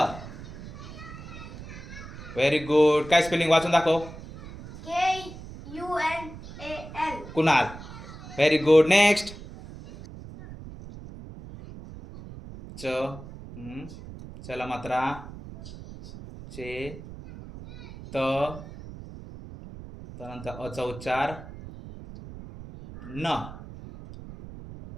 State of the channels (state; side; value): noise; right; rumble, 14 dB below the sound